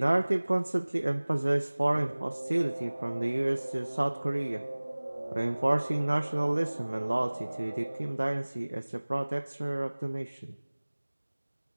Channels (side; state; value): both; inverted; correlation -1.00